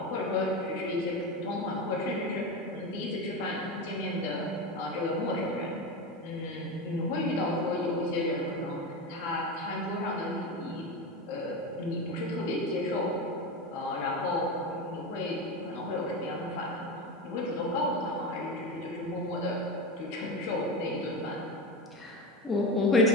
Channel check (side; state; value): both; normal; correlation 0.21